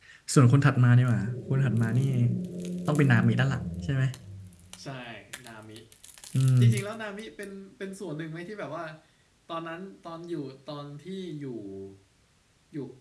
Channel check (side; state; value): both; identical; correlation 1.00